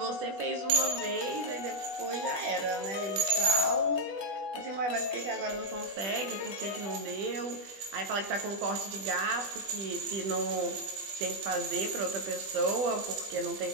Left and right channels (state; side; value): late; left; 20 ms